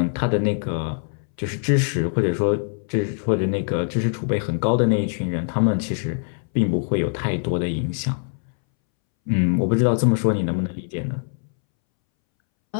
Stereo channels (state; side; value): silent; right; 64 dB below the other